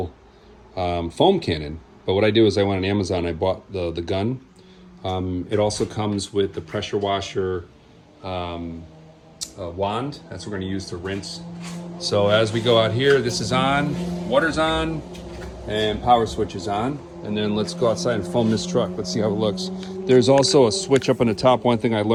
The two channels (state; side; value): identical; both; correlation 1.00